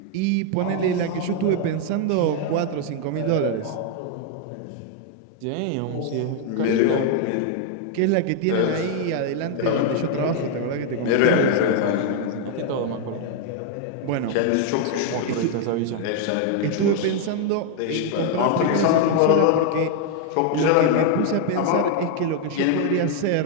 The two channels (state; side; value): different; both; correlation 0.00